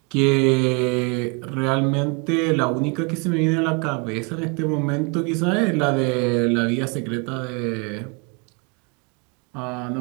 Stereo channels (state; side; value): quieter; left; 31.8 dB